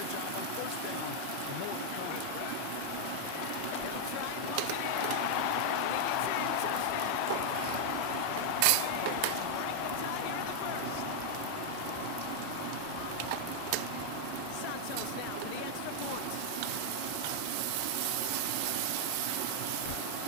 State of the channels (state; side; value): different; both; correlation 0.00